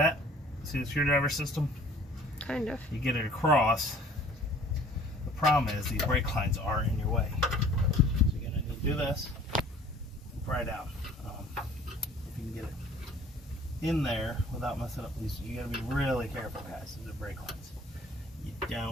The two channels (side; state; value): both; normal; correlation 0.51